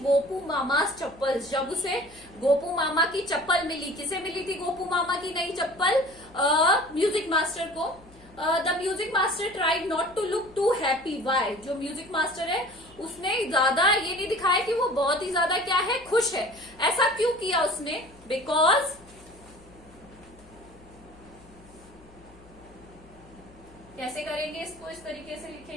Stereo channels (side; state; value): left; noise; hum, 25 dB below the sound